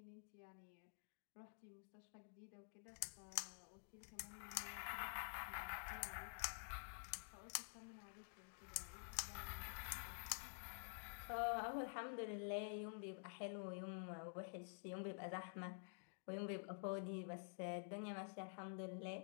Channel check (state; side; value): silent; right; digital silence